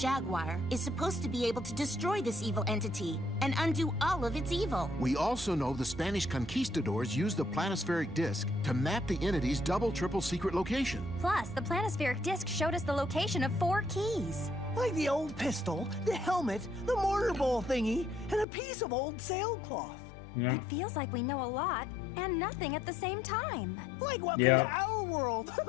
is supposed to be able to destroy this evil entity and undo all of its evil. We also know the Spanish conquistadors used the planispheric disc to map the entity's double, triple secret location. Plus, the planispheric disc showed us the location of 4 keys. Like the old pistol, the helmet, the mortar bowl thingy, and a piece of old sailcloth. Yeah. It feels like we know a lot and nothing at the same time. Like welcome Yep. to our world.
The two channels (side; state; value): right; drops out; at 18.4 s